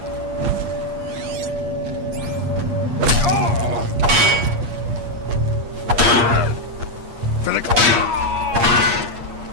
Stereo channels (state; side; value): late; left; 8.5 ms